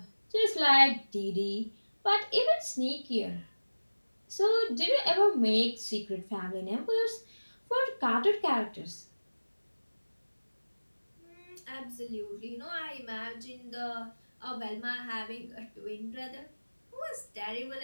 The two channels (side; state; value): both; inverted; correlation -1.00